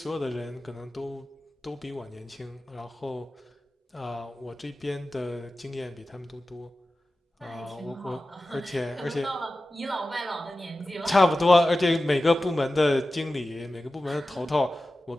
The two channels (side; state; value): both; normal; correlation 0.95